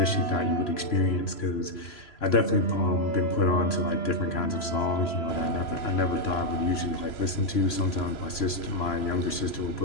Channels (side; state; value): right; late; 3.0 ms